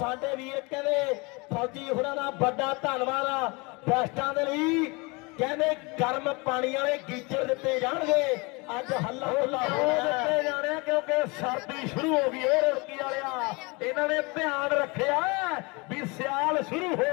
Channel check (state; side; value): quieter; right; 27.5 dB